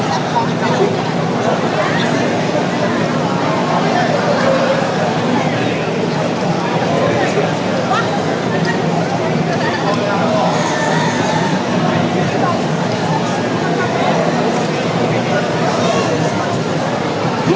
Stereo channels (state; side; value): identical; both; correlation 1.00